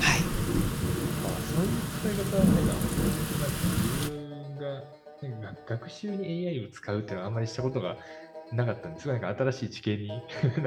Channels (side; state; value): both; identical; correlation 1.00